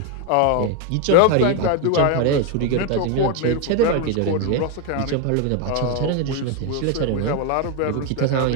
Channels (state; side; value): different; both; correlation 0.01